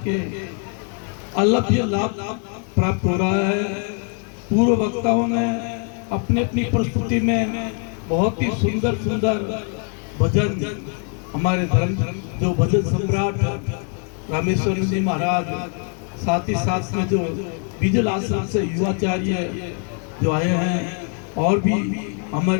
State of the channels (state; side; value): quieter; right; 38.2 dB